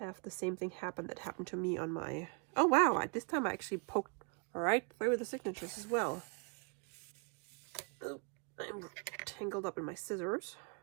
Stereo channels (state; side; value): quieter; left; 35.7 dB